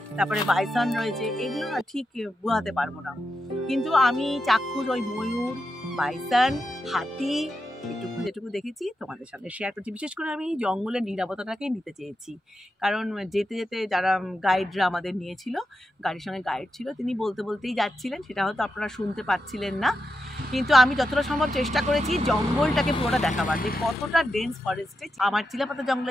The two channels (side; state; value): both; normal; correlation 0.87